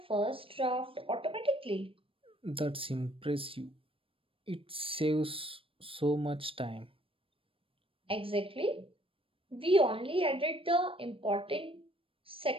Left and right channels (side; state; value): left; late; 0.26 ms